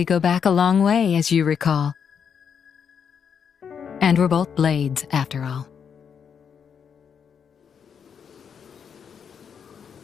go back a long way, as you recall. And we're both blades, after all.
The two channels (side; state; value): right; quieter; 7.2 dB